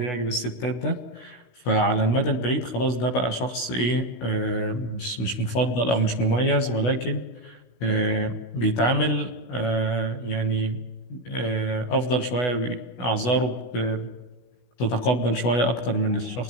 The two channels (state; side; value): late; right; 16 ms